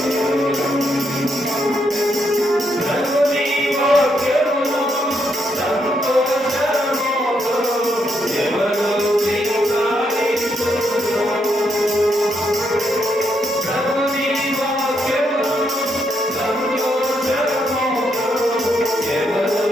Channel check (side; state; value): both; normal; correlation 0.78